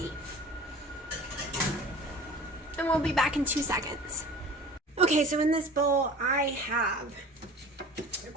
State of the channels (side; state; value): both; normal; correlation 0.42